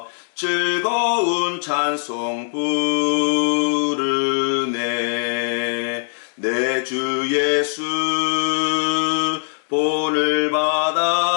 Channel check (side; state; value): right; silent; digital silence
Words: 즐거운 찬송 부르네. 내 주 예수 본을